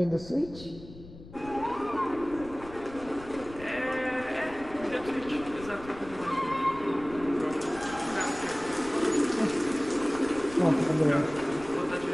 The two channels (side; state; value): left; noise; rumble, 17 dB below the sound